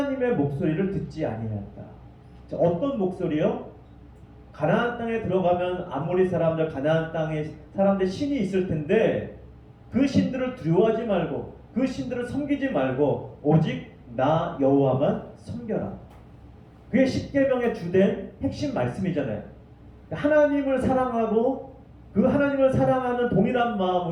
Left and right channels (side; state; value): both; identical; correlation 1.00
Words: 목소리를 듣지 아니하였다. 자, 어떤 목소리요? 가나안 땅에 들어가면 아모리 사람들, 가나안 땅에 사람들 신이 있을 텐데 그 신들을 두려워하지 말고 그 신들을 섬기지 말고 오직 나 여호와만 섬겨라. 그게 십계명의 주된 핵심 말씀이잖아요. 하나님을 사랑하고 그 하나님을 사랑하는 동일한